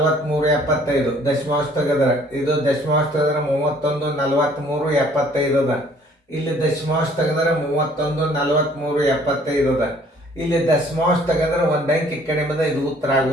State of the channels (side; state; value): both; normal; correlation 0.58